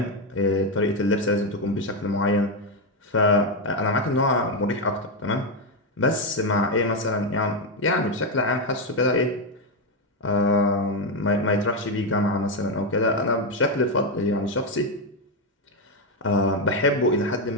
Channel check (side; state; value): both; normal; correlation 0.06